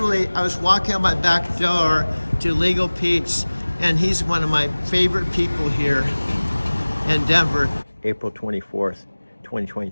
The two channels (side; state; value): both; inverted; correlation -1.00